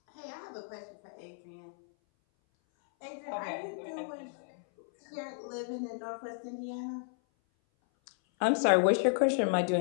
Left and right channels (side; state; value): right; silent; 56 dB below the other